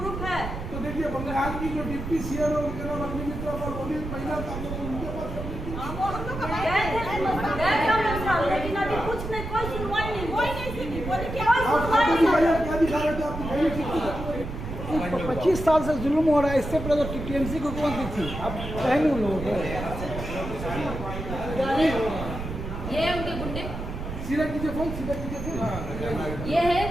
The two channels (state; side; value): noise; right; rumble, 7 dB below the sound